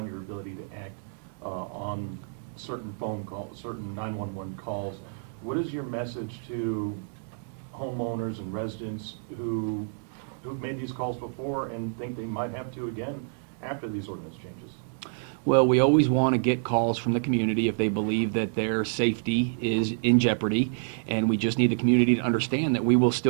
your ability to act on certain phone calls, certain 911 calls. What is your message to homeowners and residents who've made these calls before and think they might have to again after these ordinance changes? Well, we always want to get calls from the community if they believe that their safety is in jeopardy, and we just need the community to understand that we will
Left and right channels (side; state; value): left; silent; 59 dB below the other